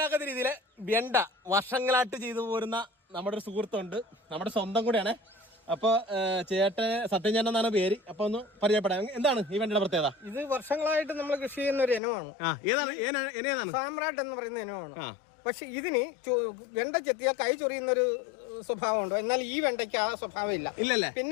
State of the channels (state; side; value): drops out; right; at 12.0 s